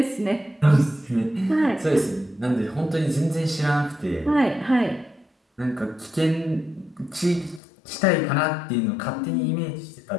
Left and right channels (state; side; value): drops out; right; at 7.6 s